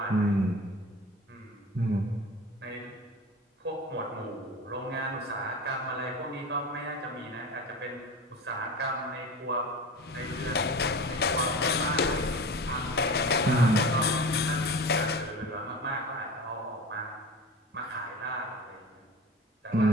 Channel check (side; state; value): both; normal; correlation 0.32